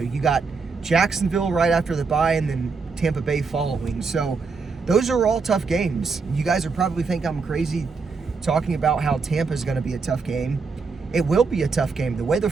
you got Jacksonville right after the bye, and then Tampa Bay following. So those are all tough games. You guys are probably think I'm crazy talking about how Tampa is going to be a tough game. It will be a tough game. The way the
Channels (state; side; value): quieter; left; 4.7 dB